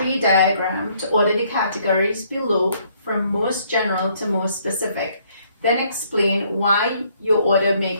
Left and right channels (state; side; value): inverted; both; correlation -0.66